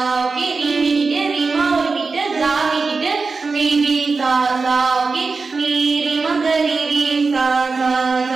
ஓகே ரீ மீட்டிட்டு ரிமா ஒரு மீட்டு கா மீட்டிட்டு ரீ ரீ சா சா ஓகே நீ ரிமாக ரீ ரீ சா சா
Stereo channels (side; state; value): left; quieter; 4.3 dB